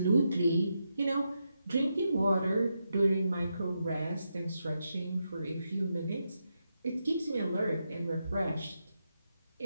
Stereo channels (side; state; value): both; inverted; correlation -0.85